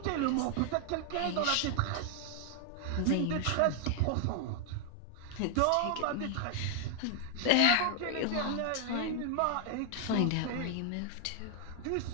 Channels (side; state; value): both; different; correlation 0.00